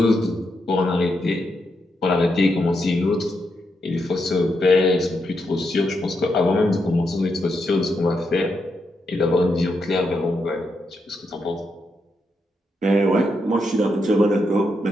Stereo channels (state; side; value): normal; both; correlation 0.82